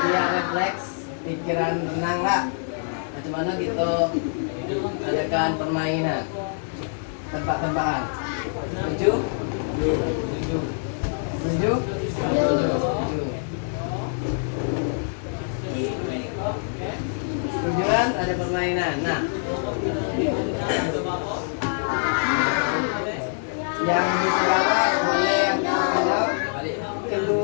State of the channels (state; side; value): silent; right; digital silence